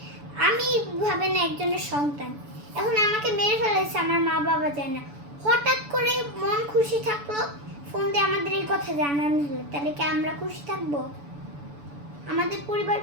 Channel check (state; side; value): late; left; 7.0 ms